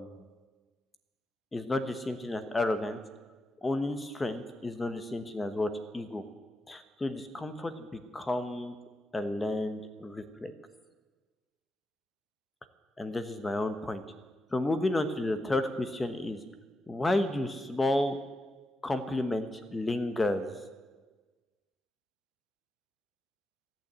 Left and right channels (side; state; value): both; normal; correlation 0.87